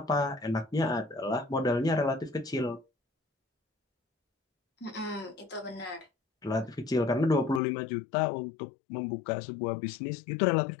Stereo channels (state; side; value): drops out; right; at 7.6 s